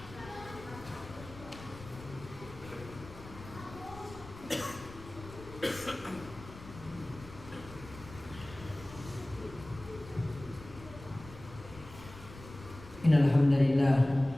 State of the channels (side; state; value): left; noise; rumble, 16 dB below the sound